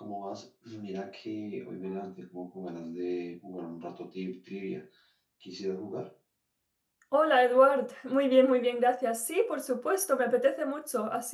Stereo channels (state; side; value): identical; both; correlation 1.00